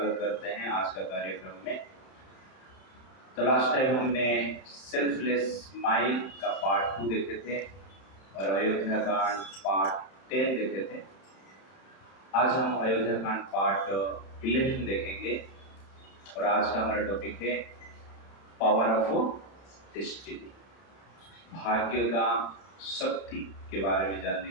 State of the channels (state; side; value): late; right; 31 ms